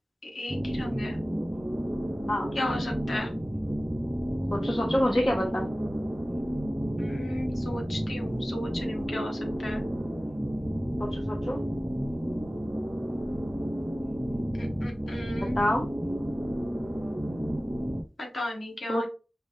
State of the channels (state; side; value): normal; both; correlation 0.97